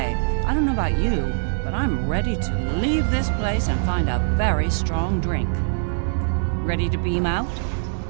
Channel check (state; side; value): silent; left; digital silence